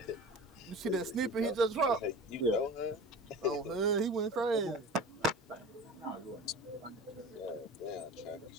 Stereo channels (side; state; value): both; normal; correlation 0.36